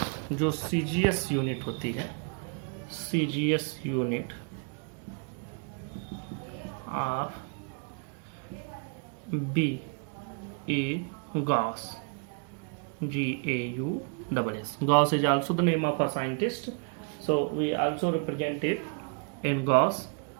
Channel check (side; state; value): left; quieter; 38.5 dB